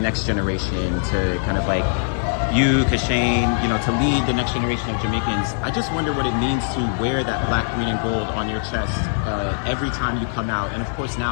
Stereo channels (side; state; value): right; silent; digital silence